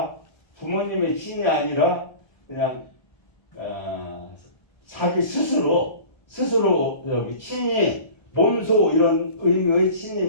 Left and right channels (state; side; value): late; right; 1.3 ms